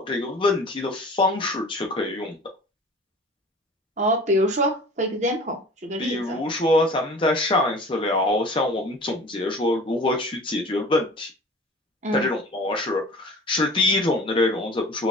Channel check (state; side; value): normal; both; correlation 0.43